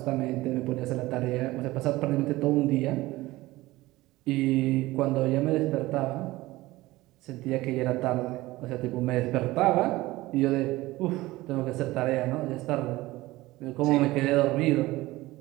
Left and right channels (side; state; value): left; quieter; 18.7 dB